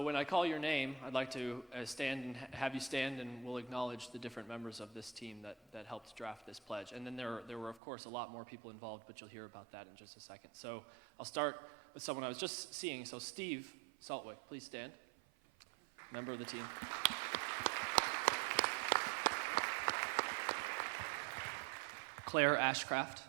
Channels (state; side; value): drops out; left; at 7.8 s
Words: when I call your name, I'd like to stand and have you stand, and we'll acknowledge the different members of this team that helped draft this pledge. And then there were, of course, a lot more people involved, but you'll hear about that in just a second. So I'll start with someone I was just seeing. So Steve Saltwick, please stand. Member of the team. Claire Ashcraft.